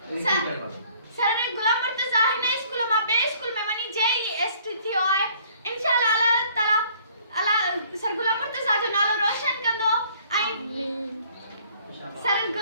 सर गुलाम मुर्तज़ा हिन स्कूल मां ॿिए स्कूल में वञी JEST थियो आहे इंशाल्लाह अल्लाह ताला अल्लाह सर गुलाम मुर्तज़ा जो नालो रोशन कंदो ऐं सर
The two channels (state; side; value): inverted; both; correlation -0.58